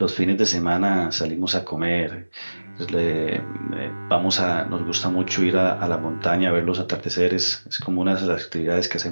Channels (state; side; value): inverted; both; correlation -1.00